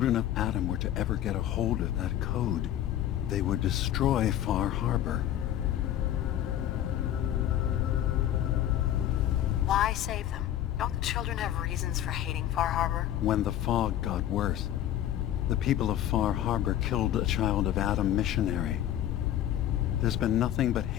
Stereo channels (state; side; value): quieter; right; 11.8 dB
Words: of Adam were to ever get a hold of that code, they would destroy Far Harbor. Why save them? Don't the children have reasons for hating Far Harbor? When the fog got worse, the people of Far Harbor killed a child of Adam missionary. There's been nothing but